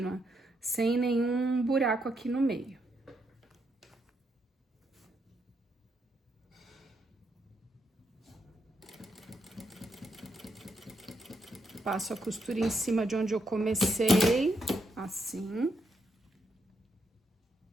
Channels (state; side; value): normal; both; correlation 0.79